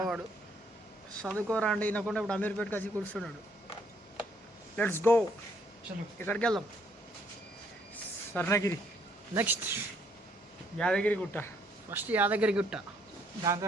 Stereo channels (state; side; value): normal; both; correlation 0.68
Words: చదువుకోరా అంటే వినకుండా ఇప్పుడు అమీర్పేటకి వచ్చి కూర్చున్నాడు. Let's go. ఎక్కడికి వెళ్దాం? స్వర్ణగిరి, నెక్స్ట్ యాదగిరి గుట్ట. ఫస్ట్ యాదగిరి గుట్ట, దాని